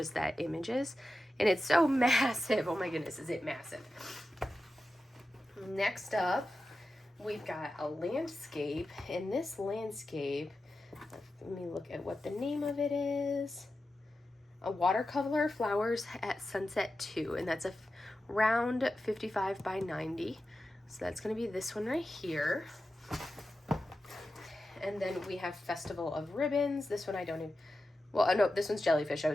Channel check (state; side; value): normal; both; correlation 0.92